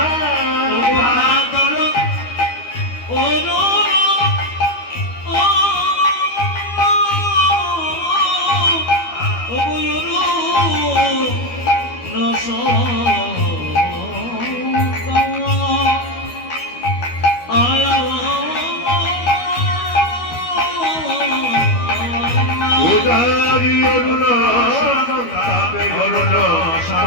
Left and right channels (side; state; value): right; late; 12 ms